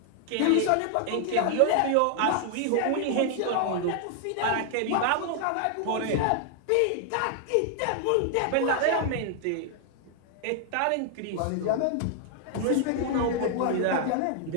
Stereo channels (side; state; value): both; different; correlation 0.00